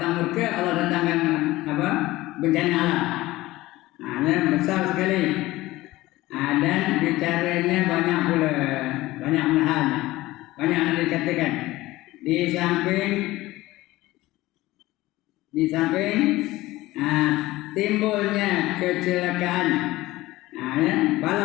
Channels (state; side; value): quieter; right; 18.0 dB